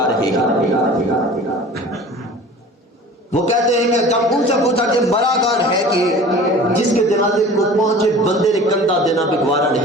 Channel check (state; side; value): normal; both; correlation 0.42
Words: رہے ہیں۔ وہ کہتے ہیں کہ جب ان سے پوچھا کہ مرا کون ہے کہ جس کے جنازے کو پہنچے بندے نے کندھا دینا بھی گوارا